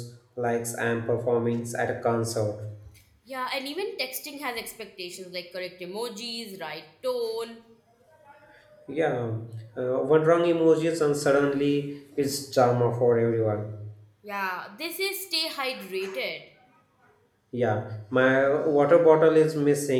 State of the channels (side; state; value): both; identical; correlation 1.00